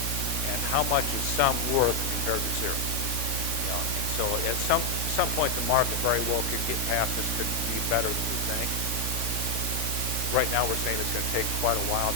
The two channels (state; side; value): late; right; 3.5 ms